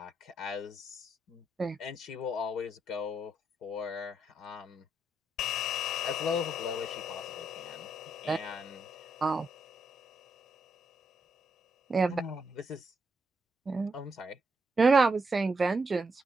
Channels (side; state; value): both; normal; correlation 0.79